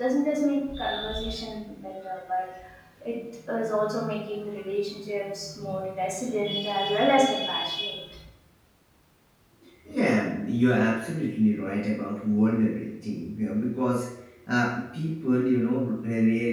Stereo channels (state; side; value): identical; both; correlation 1.00